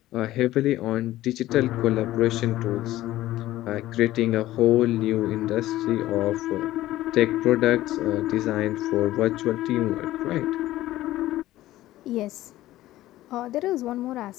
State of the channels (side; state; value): right; quieter; 15.4 dB